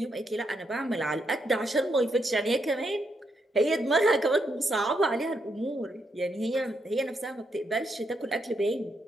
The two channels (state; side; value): normal; both; correlation 0.79